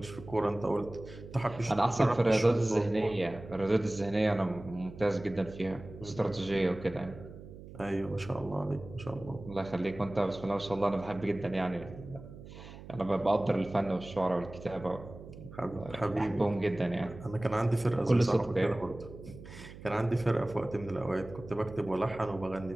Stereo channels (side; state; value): right; noise; hum, 15 dB below the sound